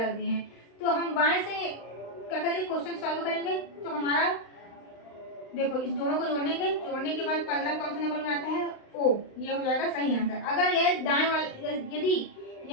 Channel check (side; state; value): right; late; 35 ms